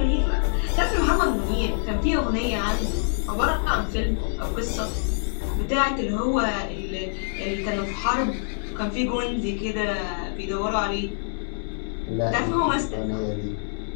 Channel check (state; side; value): silent; right; 61 dB below the other